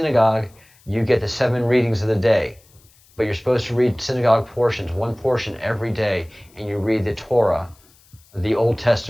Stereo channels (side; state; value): left; noise; hiss, 30 dB below the sound